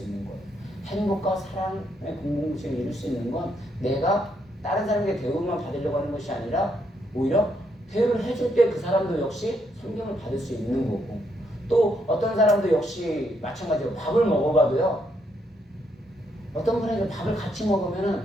있는 거예요. 행복과 사랑의 공동체를 이룰 수 있는 건 내가 다른 사람에게 대우만 받으려고 하는 것이 아니라 오히려 대우를 해줄 때 그 사람도 역시 존경을 받을 수 있는 거고 또 어떤 사람도 역시 마찬가지로 밥을 먹어봐도요. 어떤 분에게 밥을 같이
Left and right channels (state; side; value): normal; both; correlation 0.75